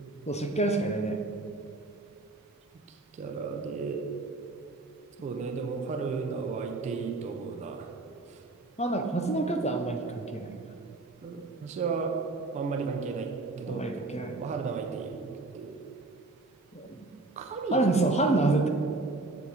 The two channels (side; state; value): left; quieter; 3.1 dB